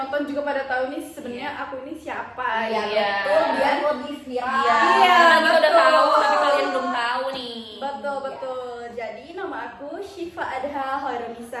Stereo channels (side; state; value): both; identical; correlation 1.00